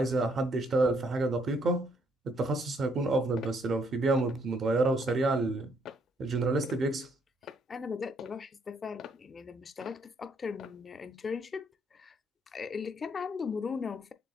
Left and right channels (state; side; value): normal; both; correlation 0.70